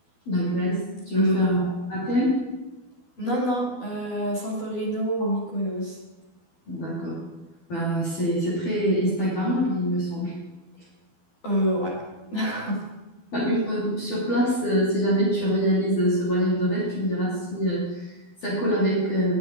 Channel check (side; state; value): right; late; 12 ms